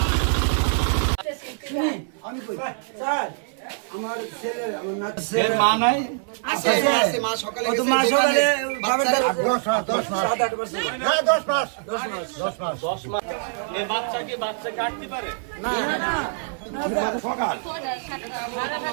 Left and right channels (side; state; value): left; silent; 62 dB below the other